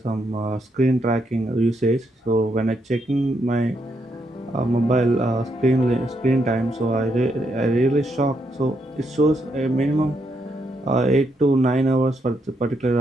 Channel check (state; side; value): normal; both; correlation 0.78